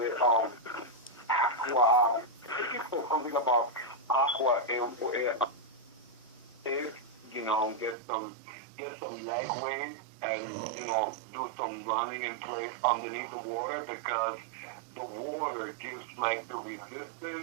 aqua. I think he said something about aqua. You know, get some leg weight and, you know, do some running in place underneath the water, because the water gives like the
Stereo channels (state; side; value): drops out; left; at 8.0 s